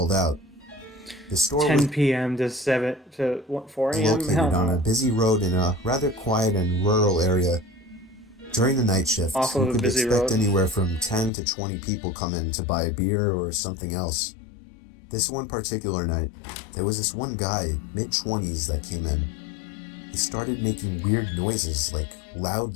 out. The store 10 p.m. to 4 a.m. located on a busy road in a rather quiet and rural area. During the night shift, you could expect anywhere from 10 to 20 people come in to buy a beer or something else. This one particular night, there was this one guy, mid-20s, that came in. He started making weird noises, like loud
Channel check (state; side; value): drops out; right; at 11.3 s